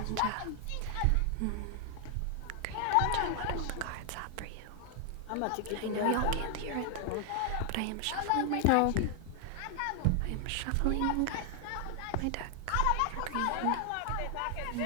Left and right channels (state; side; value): different; both; correlation 0.00